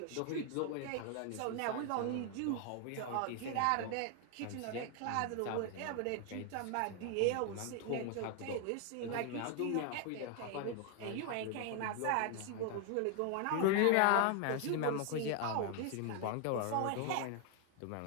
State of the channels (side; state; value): both; different; correlation 0.00